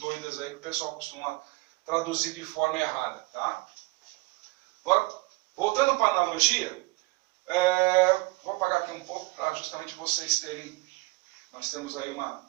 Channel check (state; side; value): quieter; left; 24.0 dB